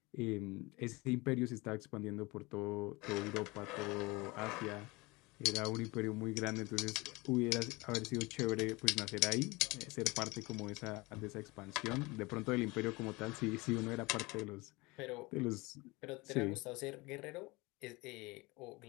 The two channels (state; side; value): quieter; right; 23.9 dB